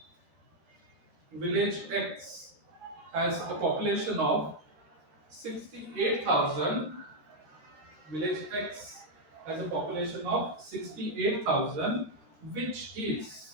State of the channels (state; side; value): late; left; 14 ms